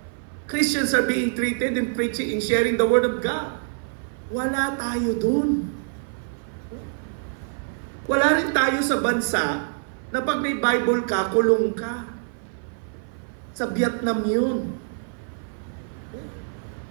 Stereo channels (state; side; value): silent; left; 56 dB below the other